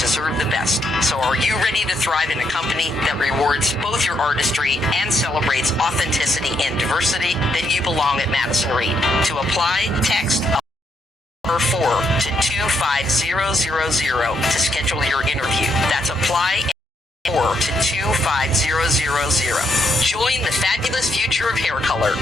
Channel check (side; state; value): both; normal; correlation 0.76